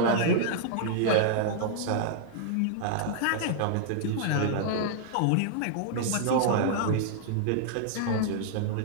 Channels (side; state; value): both; different; correlation -0.01